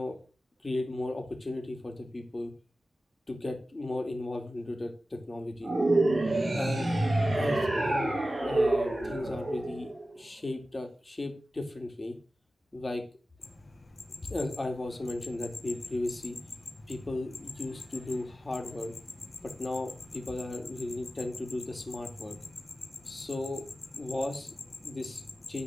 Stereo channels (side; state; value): both; normal; correlation 0.94